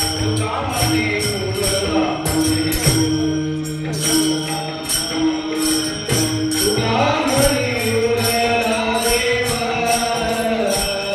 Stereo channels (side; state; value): both; identical; correlation 1.00